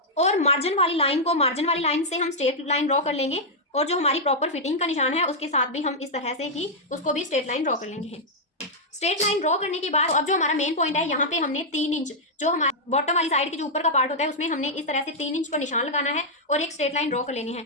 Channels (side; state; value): both; normal; correlation -0.06